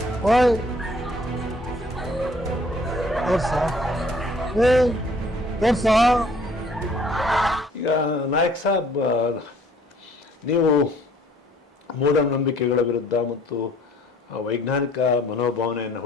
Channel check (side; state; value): both; normal; correlation 0.58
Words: ಓಯ್ ತೋರ್ಸ. ಈಗ ನಾಯಕ್ ಸಾಬ್, ನೀವು ಮೂಢನಂಬಿಕೆಗಳ ವಿರುದ್ಧ ಮತ್ತು ವೈಜ್ಞಾನಿಕ ಮನೋಭಾವನೆಯನ್ನು